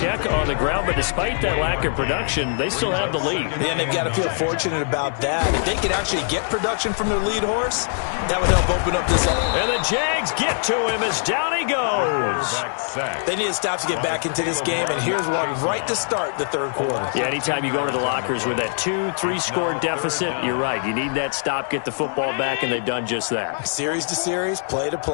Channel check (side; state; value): right; silent; digital silence